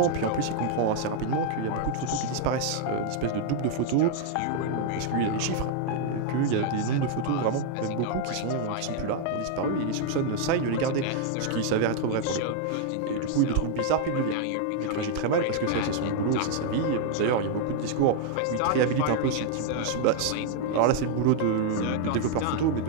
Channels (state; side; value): different; both; correlation 0.00